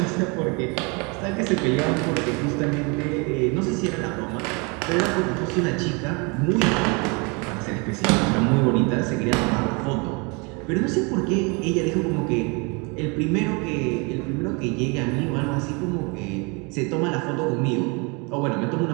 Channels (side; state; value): left; quieter; 30.6 dB